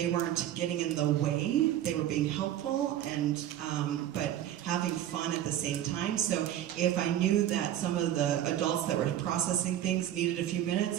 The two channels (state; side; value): quieter; left; 11.8 dB